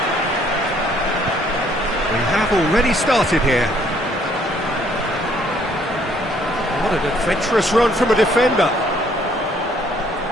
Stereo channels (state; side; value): normal; both; correlation 0.64